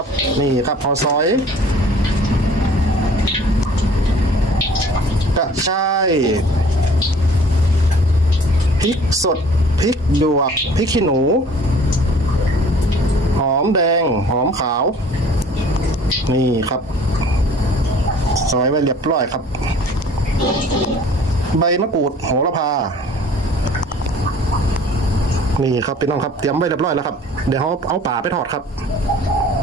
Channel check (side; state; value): both; normal; correlation 0.51